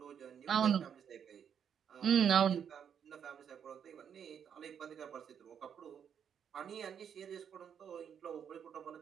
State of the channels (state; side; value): quieter; left; 8.1 dB